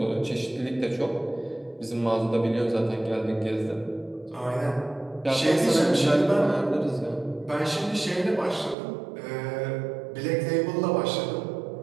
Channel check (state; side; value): drops out; left; at 8.8 s